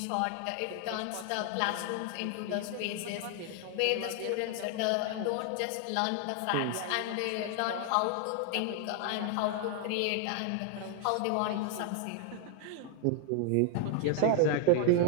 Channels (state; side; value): different; both; correlation 0.00